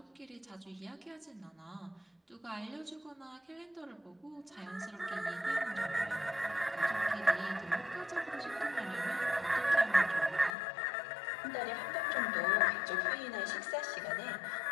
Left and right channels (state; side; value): drops out; right; at 10.6 s